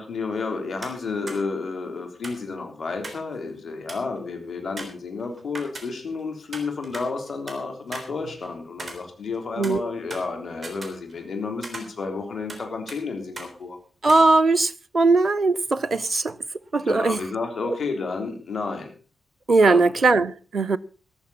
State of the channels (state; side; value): normal; both; correlation 0.84